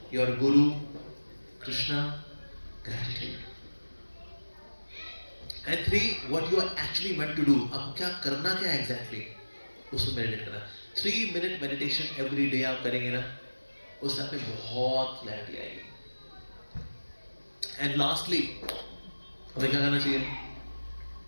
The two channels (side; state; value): both; inverted; correlation -1.00